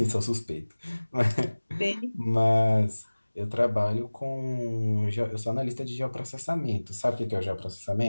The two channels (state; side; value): inverted; both; correlation -1.00